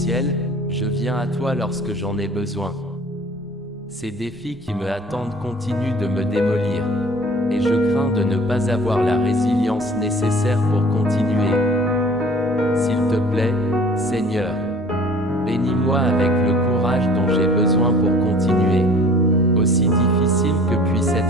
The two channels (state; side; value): normal; both; correlation 0.49